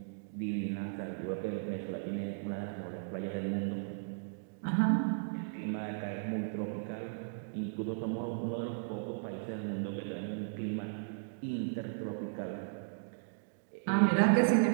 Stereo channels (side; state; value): left; silent; digital silence